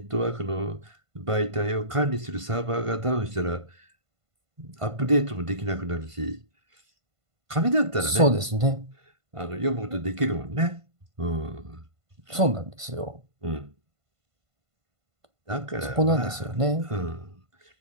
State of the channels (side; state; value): left; late; 1.5 ms